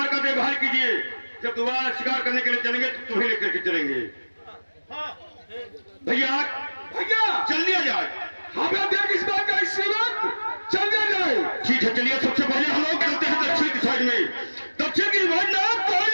का देखभाल कीजिए। जब दोबारा शिकार करने के लिए चलेंगे तो तुम्हें लेकर के चलेंगे। भैया भैया चल दिया जाए। हमें देख इस बात का इसी वक्त चल दिया जाए। ठीक है चलिए, सबसे पहले हम लोग चलते हैं दक्षिण की साइड में। दक्षिण की साइड में कोई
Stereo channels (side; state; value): both; inverted; correlation -1.00